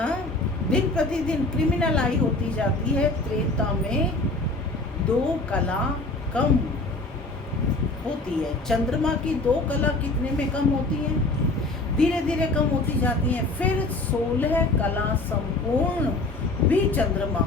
दिन प्रतिदिन क्रिमिनल आई होती जाती है, त्रेता में 2 कला कम होती है। चंद्रमा की 2 कला कितने में कम होती है? धीरे धीरे कम होती जाती है। फिर 16 कला संपूर्ण भी चंद्रमा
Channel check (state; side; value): quieter; right; 3.0 dB